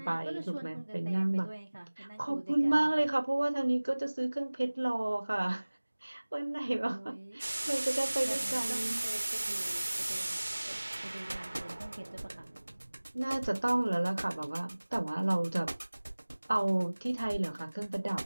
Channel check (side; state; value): both; inverted; correlation -1.00